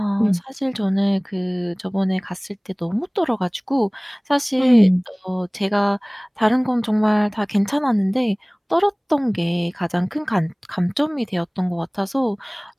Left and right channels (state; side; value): identical; both; correlation 1.00